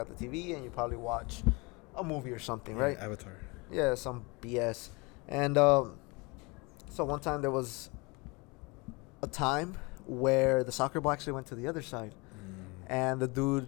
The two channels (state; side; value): quieter; right; 27.4 dB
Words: the TV and you probably watch a movie or something, right? Avatar. Yeah, some BS. And so one time there was a time where the soccer ball actually went to the other side. And the